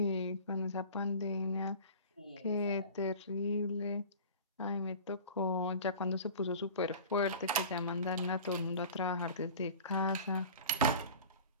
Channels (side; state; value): both; inverted; correlation -0.39